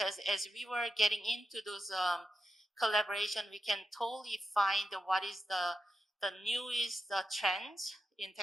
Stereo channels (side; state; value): both; normal; correlation 0.89